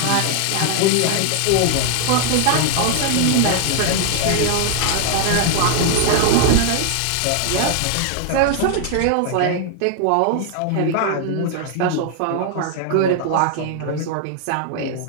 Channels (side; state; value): both; different; correlation 0.00